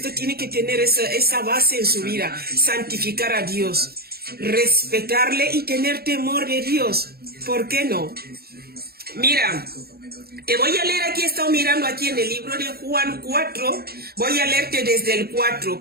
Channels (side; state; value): left; late; 0.45 ms